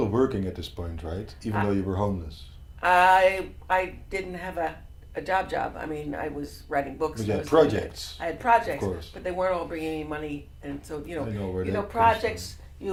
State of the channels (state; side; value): identical; both; correlation 1.00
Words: working at this point, right? Even though you were homeless. I didn't have a job. I mean, I was writing books. But you I had was projects. I had projects, Of course. but they weren't all bringing me money. And so, I know where that comes projects, you